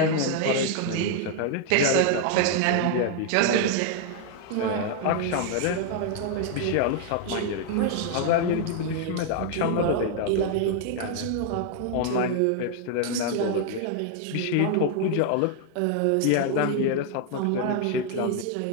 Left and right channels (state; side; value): different; both; correlation 0.00